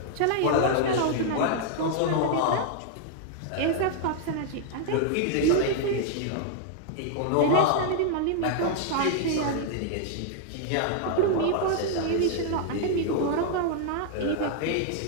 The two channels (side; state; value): both; different; correlation -0.01